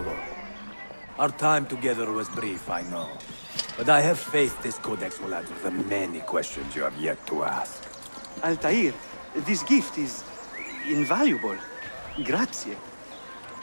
Our time together was brief, I know. But I have faith this codex will answer the many questions you have yet to ask. Altair, this gift is invaluable. Grazie.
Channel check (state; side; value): inverted; both; correlation -1.00